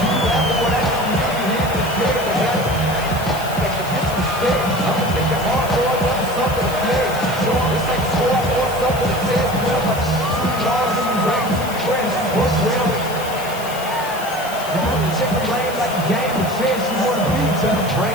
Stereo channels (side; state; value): left; noise; hiss, 14 dB below the sound